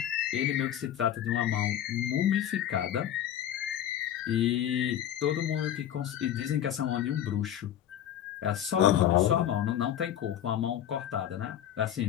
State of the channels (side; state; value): right; quieter; 10.8 dB